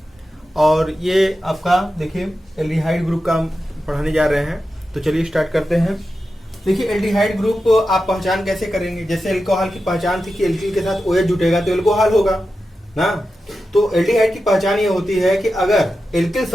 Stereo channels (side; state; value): both; normal; correlation 0.91